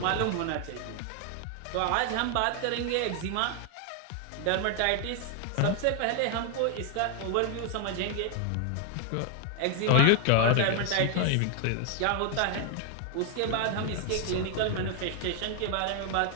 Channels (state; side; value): different; both; correlation 0.00